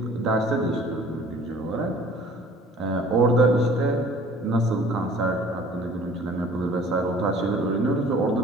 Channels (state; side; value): normal; both; correlation 0.51